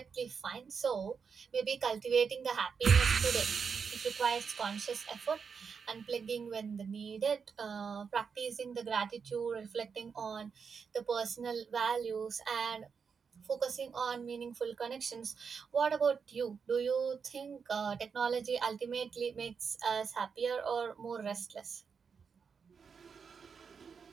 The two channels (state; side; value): quieter; left; 6.0 dB